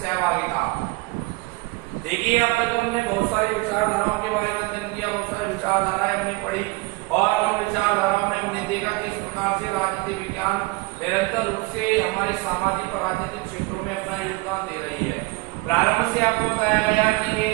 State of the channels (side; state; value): left; quieter; 23.9 dB